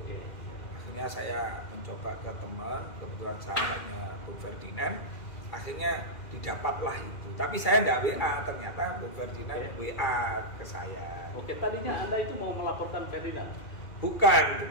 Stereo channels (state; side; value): late; right; 2.4 ms